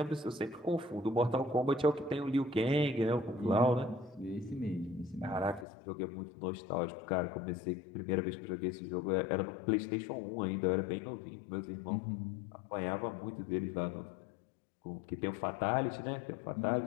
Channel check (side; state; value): right; drops out; at 5.7 s